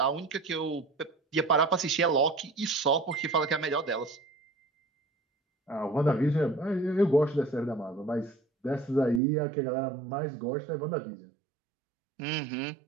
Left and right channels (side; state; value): left; drops out; at 9.2 s